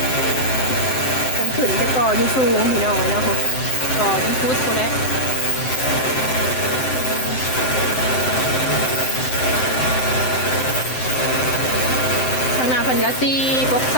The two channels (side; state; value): right; late; 7.8 ms